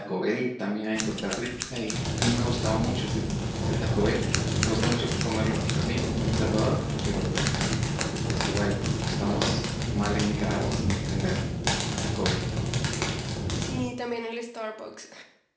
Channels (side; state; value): both; identical; correlation 1.00